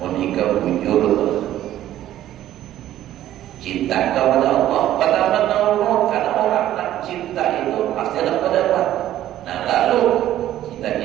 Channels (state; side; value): quieter; left; 12.8 dB